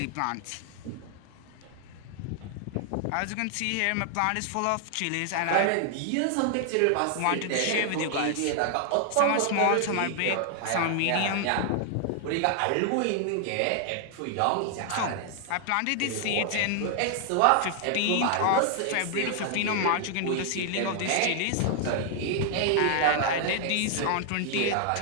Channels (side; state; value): both; different; correlation 0.00